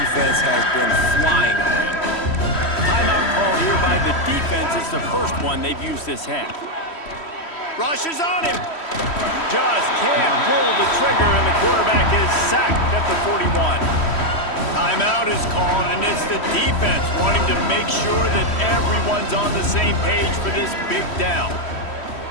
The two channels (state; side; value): late; right; 3.1 ms